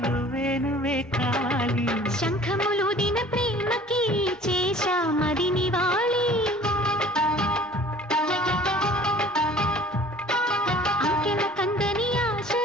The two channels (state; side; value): normal; both; correlation 0.48